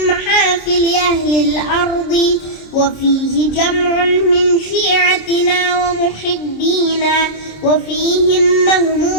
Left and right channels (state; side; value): late; right; 27 ms